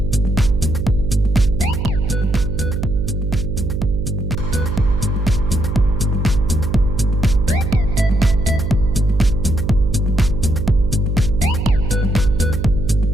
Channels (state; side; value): noise; right; hum, 2 dB below the sound